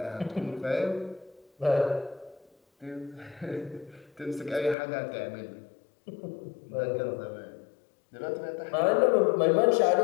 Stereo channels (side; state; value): right; drops out; at 4.8 s